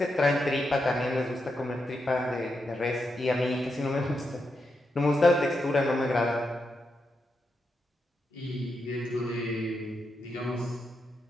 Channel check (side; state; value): both; normal; correlation 0.85